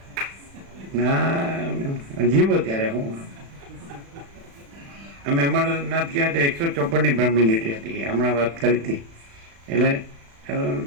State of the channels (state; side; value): late; left; 36 ms